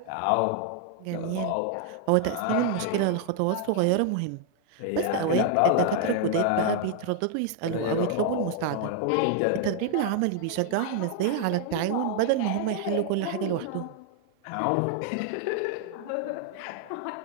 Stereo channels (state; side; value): different; both; correlation 0.00